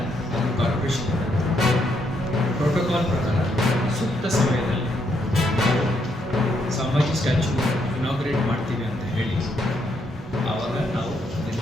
corporation protocol ಪ್ರಕಾರ ಸೂಕ್ತ ಸಮಯದಲ್ಲಿ ನಾವು ಸಂಭಾಜಿ ಸ್ಟ್ಯಾಚ್ಯೂ ಇನಾಗ್ರೇಟ್ ಮಾಡ್ತೀವಿ ಅಂತ ಹೇಳಿ ಆವಾಗ ನಾವು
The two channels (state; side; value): normal; both; correlation 0.75